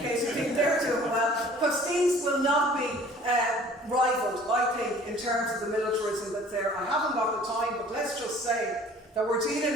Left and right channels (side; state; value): both; normal; correlation 0.50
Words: you think they're doing well, because things will not be rivaled, I think, in terms of the militarism that's there. I haven't got the time, but let's just say that we're